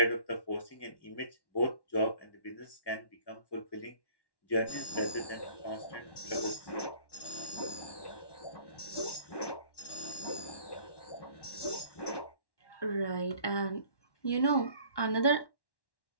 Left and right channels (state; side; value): late; right; 1.1 ms